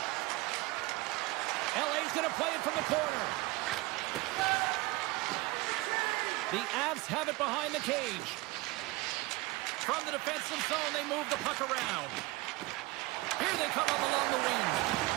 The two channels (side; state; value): left; quieter; 21.4 dB